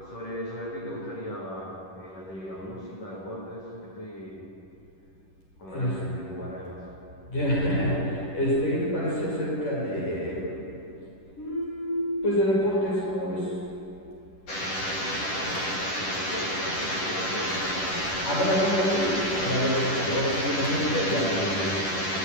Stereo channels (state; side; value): late; right; 10 ms